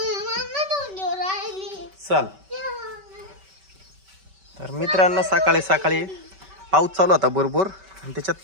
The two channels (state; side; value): late; left; 5.2 ms